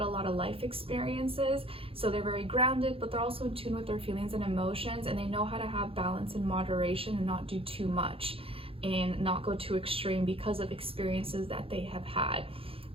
a lot of life experiences. So they're very grounded, but they're also in tune with their feelings and emotions, and they know how to have balance and moderation and not do too much and not go too extreme because of experiences that they have had.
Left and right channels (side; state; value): left; late; 0.27 ms